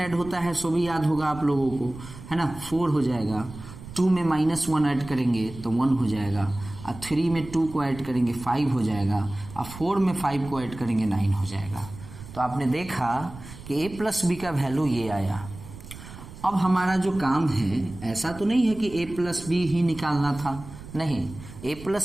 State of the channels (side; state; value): right; noise; rumble, 15 dB below the sound